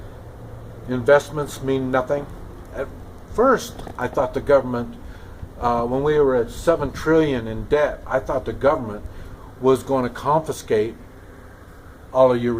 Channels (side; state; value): both; identical; correlation 1.00